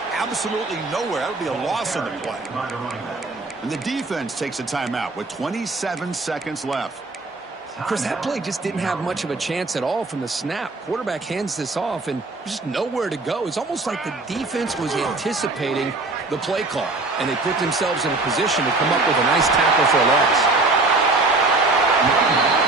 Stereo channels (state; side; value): quieter; left; 3.3 dB